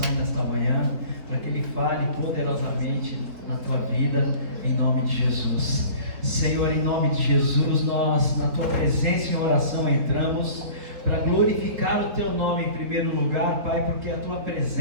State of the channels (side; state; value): left; late; 3.9 ms